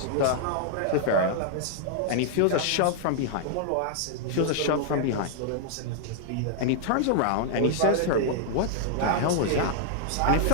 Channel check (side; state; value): both; different; correlation -0.01